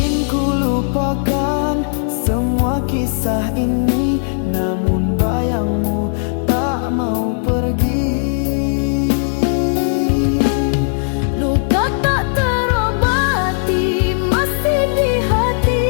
ku lupakan semua kisah ini, namun bayangmu tak mau pergi. Luka tak terobati masih di hati.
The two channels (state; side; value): silent; right; 68 dB below the other